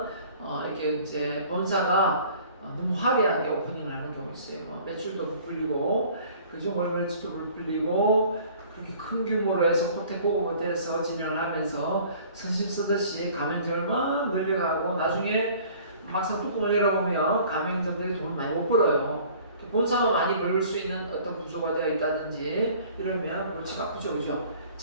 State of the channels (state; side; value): inverted; both; correlation -0.51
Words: 이렇게 이제 본사가 너무 화려하게 오프닝을 하는 경우 있어요. 매출도 못 불리고, 그죠? 월매출도 못 불리고, 그렇게 큰 규모로 해서 호텔 고급 호텔에서 진행을 하면서 선심 쓰듯이 가맹점을 막 늘려가고 나중에 막상 뚜껑을 열어보면 가맹점들이 돈을 많이 못 벌어요. 본사가 많이 벌 수 있는 어떤 구조가 되어 있다든지 이러면 골치가 아프죠, 그죠?